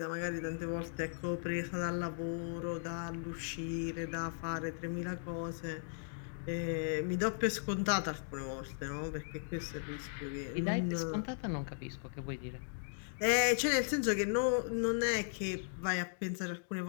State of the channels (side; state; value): right; silent; digital silence